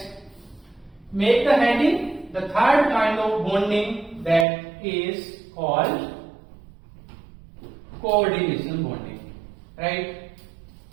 make the heading. The third kind of bonding that is called coordination bonding, right?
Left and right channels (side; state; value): left; drops out; at 4.5 s